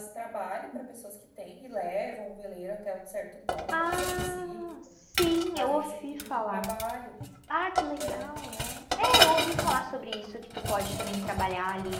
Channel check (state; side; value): identical; both; correlation 1.00